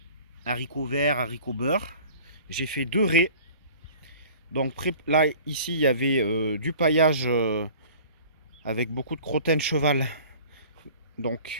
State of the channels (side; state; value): both; inverted; correlation -0.45